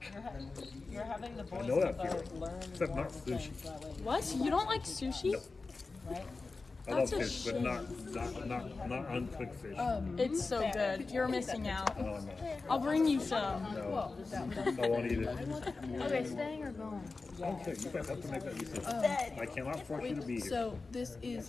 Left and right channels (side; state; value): right; quieter; 3.9 dB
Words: you're having the I boys know that to feeling. learn Except more not things sushi. that way, What? You don't like sushi? right? I love That's a fish, but shame. not uncooked fish. It's so good. You're missing out. No, no, I'll bring you some. no. I won't eat it. Okay, staying or going? Okay, you guys have to make that decision. I cannot force you to be here. So this